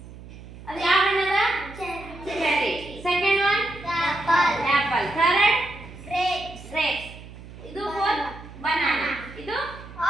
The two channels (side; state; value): right; noise; hum, 16 dB below the sound